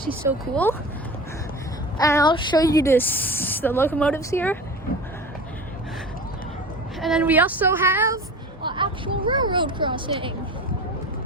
so cool. And I'll show you the locomotives here. And then we also have an actual railroad crossing.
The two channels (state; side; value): normal; both; correlation 0.34